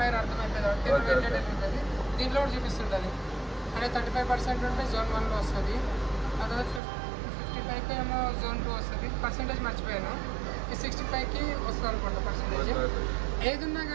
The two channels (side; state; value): left; drops out; at 6.8 s